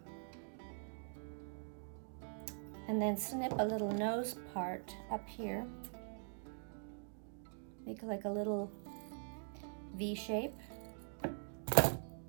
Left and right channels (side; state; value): left; silent; digital silence